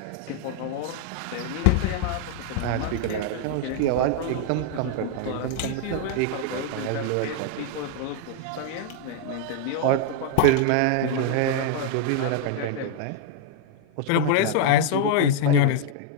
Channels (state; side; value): different; both; correlation 0.00